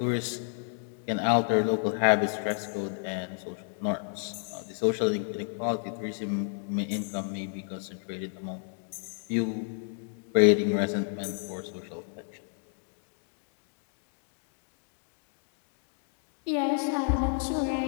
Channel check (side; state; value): right; silent; 57 dB below the other